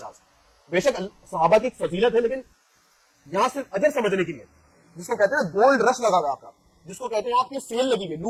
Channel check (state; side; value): identical; both; correlation 1.00